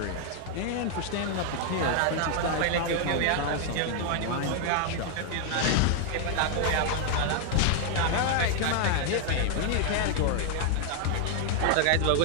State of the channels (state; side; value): different; both; correlation 0.00